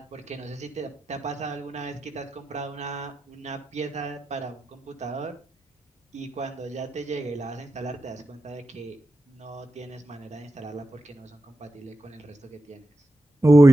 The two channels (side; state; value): both; normal; correlation 0.90